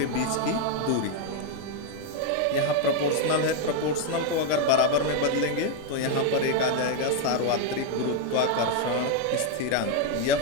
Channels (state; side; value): different; both; correlation 0.01